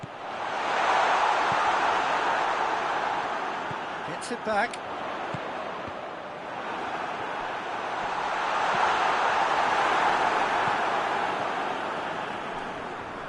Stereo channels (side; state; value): both; identical; correlation 1.00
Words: Gets it back.